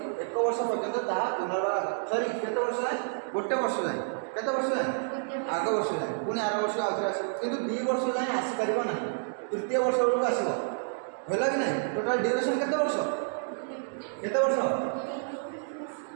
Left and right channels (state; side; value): silent; left; digital silence